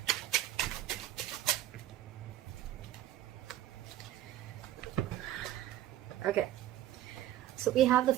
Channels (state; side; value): quieter; left; 13.1 dB